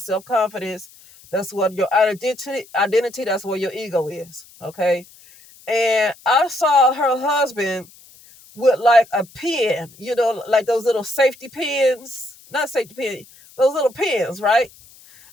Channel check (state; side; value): noise; left; hiss, 24 dB below the sound